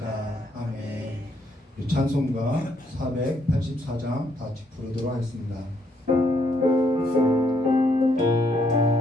아멘. 우리 찬송가 484장 다 같이 부르도록 하겠습니다.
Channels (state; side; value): normal; both; correlation 0.72